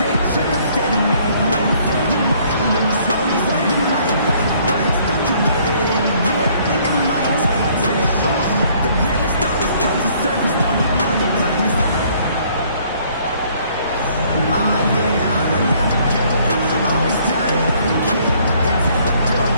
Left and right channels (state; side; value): inverted; both; correlation -0.62